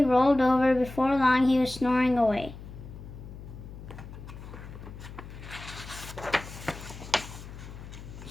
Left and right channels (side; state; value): left; noise; hum, 13 dB below the sound